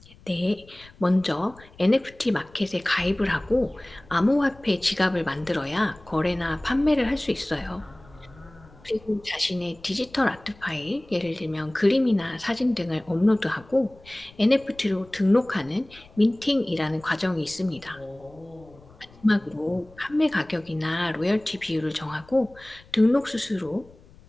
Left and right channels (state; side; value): noise; left; rumble, 24 dB below the sound